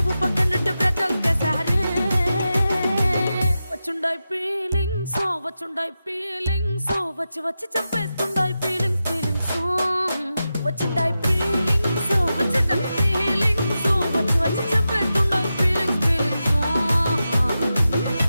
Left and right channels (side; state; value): both; inverted; correlation -0.91